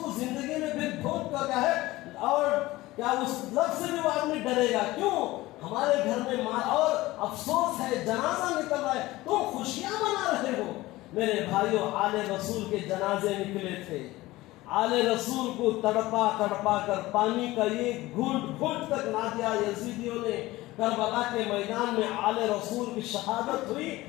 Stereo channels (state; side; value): quieter; right; 18.5 dB